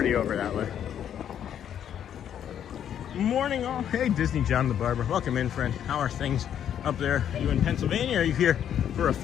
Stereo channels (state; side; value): quieter; right; 9.6 dB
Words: over that way. Morning all. Hey, Disney John the Barber. Welcome in, friend. How are things up there? Are you in Pennsylvania or are you here for a